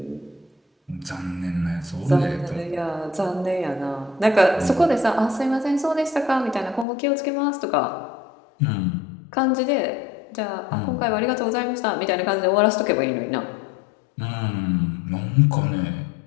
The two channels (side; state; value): right; drops out; at 6.9 s